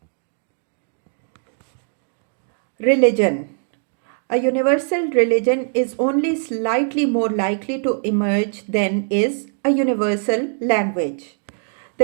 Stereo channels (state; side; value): silent; left; digital silence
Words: Religion. A universal religion is only slightly more likely to emerge than is a universal language.